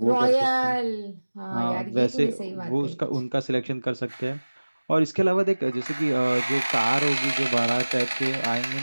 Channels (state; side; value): inverted; both; correlation -1.00